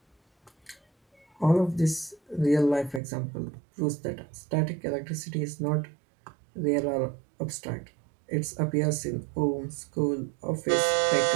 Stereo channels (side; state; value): left; drops out; at 3.0 s